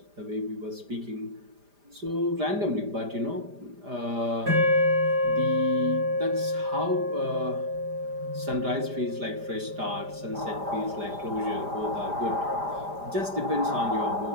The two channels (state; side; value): late; left; 5.0 ms